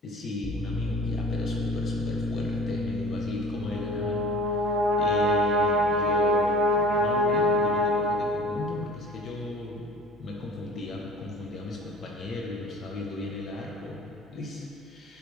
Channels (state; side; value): normal; both; correlation 0.44